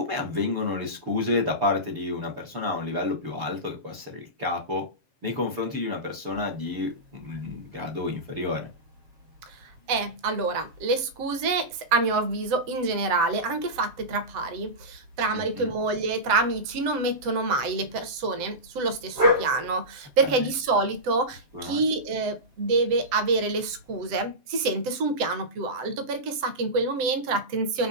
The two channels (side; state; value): left; late; 7.8 ms